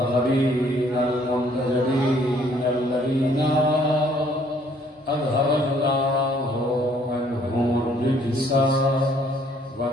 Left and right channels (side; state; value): both; normal; correlation 0.62